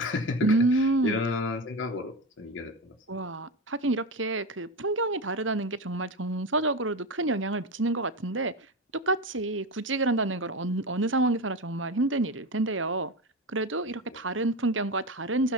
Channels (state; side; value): normal; both; correlation 0.20